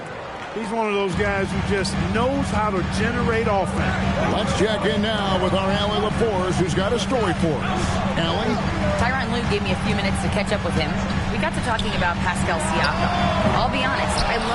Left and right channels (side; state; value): both; identical; correlation 1.00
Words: He's one of those guys who just knows how to generate offense. Let's check in now with our Allie LaForce, who's got a story for us. Allie? Tyronn Lue gave me a few minutes to catch up with him. We got to talking about Pascal Siakam. I'll be honest, I